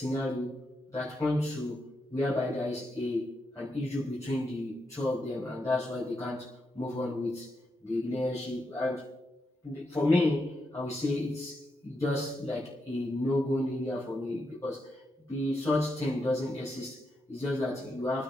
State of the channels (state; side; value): normal; both; correlation 0.84